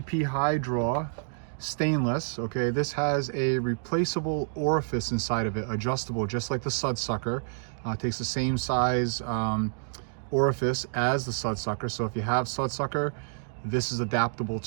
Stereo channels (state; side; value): silent; left; digital silence